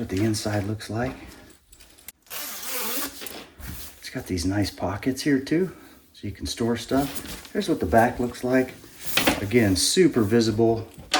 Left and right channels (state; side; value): identical; both; correlation 1.00